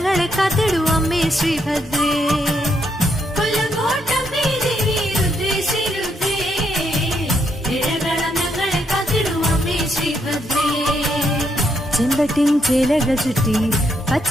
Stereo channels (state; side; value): normal; both; correlation 0.76